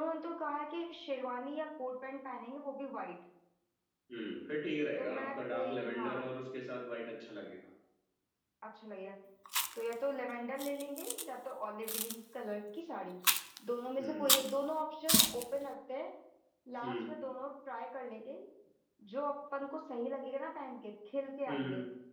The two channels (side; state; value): both; identical; correlation 1.00